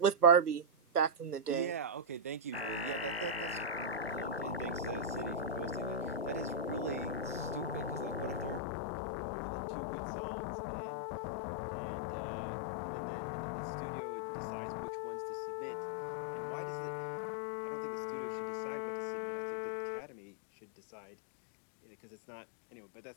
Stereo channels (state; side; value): drops out; right; at 8.6 s